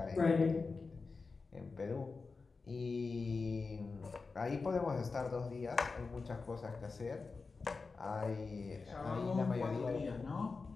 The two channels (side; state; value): right; quieter; 4.3 dB